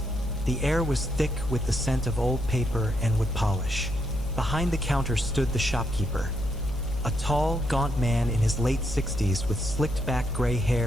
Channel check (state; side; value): noise; left; hum, 11 dB below the sound